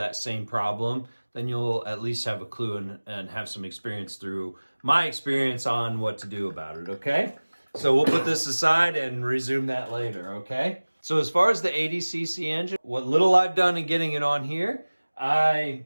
same problem, then you'll at least have a clue and have some experience through my experience on what to do about it, okay? So we'll put this aside and resume that later, okay? So as far as the 80cc engine, what little I've done in getting it on here, I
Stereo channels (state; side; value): inverted; both; correlation -1.00